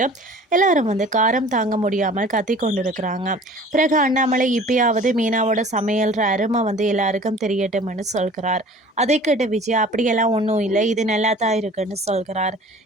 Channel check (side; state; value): both; normal; correlation 0.46